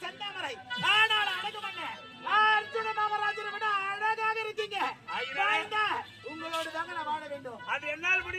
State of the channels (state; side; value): identical; both; correlation 1.00